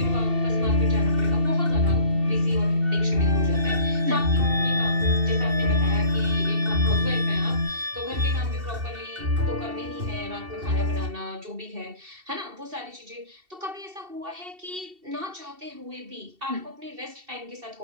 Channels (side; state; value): left; late; 2.7 ms